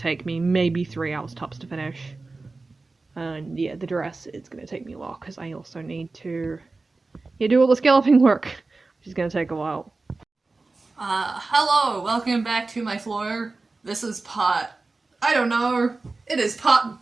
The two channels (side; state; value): left; quieter; 3.6 dB